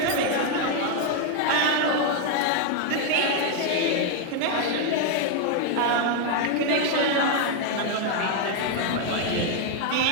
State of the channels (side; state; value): both; different; correlation 0.00